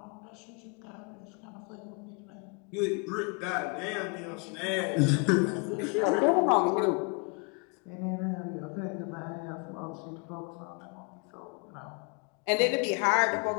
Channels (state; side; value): quieter; right; 34.2 dB